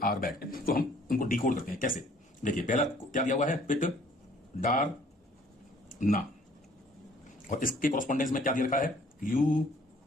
आर बैड। तो हम उनको डिकोड करते हैं कैसे। देखिए, पहला क्या दिया हुआ है, पिट डार ना, और इसके कोरस्पोंडेंस में क्या दिया रखा है, यू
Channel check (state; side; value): normal; both; correlation 0.58